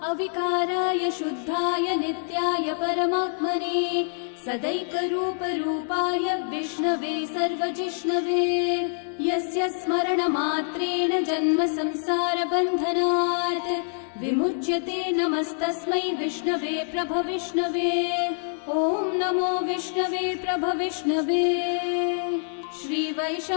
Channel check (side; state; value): right; silent; digital silence